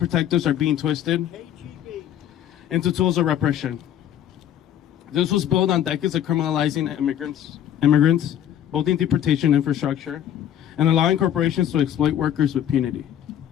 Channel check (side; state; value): right; quieter; 10.5 dB